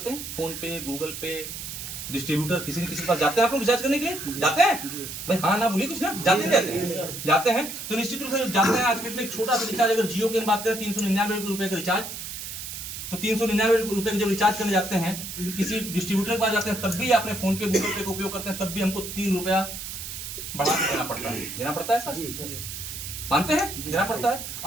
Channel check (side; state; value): right; noise; hiss, 8 dB below the sound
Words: हैं, फोन पे, गूगल पे, डिस्ट्रीब्यूटर, किसी न किसी के पास जाते हैं। आप लोग रिचार्ज करने के लिए जाते हैं भाई, हाँ ना बोलिए कुछ ना, जाते हैं जाते हैं तो निश्चित रूप से जाते हैं। आज के डेट में एक छोटा सा रिचार्ज, अगर जियो की हम बात करें ₹399 का रिचार्ज, तो ₹399 जब रिचार्ज करने जाते हैं किसी डिस्ट्रीब्यूटर के पास जाते हैं, तब भी अपने फोन पे, गूगल पे का उपयोग करते हैं, तब भी हमको ₹3 बढ़ा के देना पड़ता है सर, मानते हैं, देना पड़ता है।